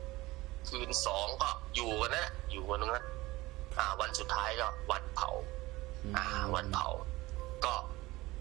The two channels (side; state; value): left; quieter; 19.7 dB